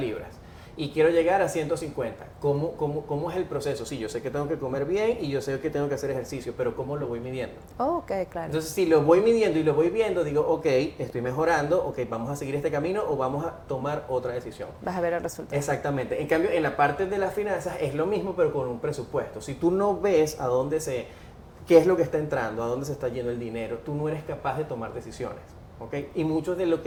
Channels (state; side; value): identical; both; correlation 1.00